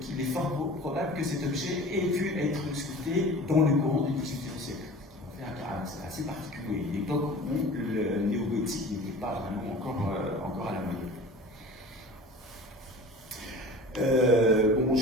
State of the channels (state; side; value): normal; both; correlation 0.40